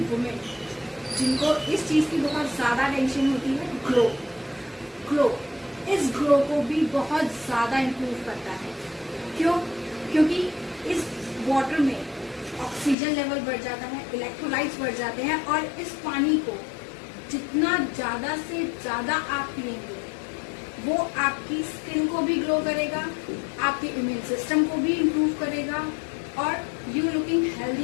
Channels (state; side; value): drops out; right; at 13.0 s